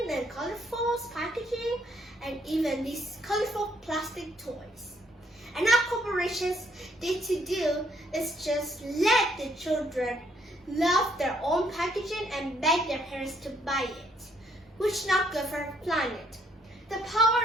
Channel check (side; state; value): both; normal; correlation 0.69